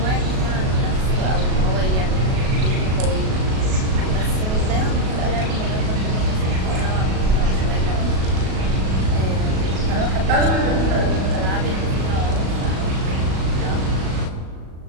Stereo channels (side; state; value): left; late; 37 ms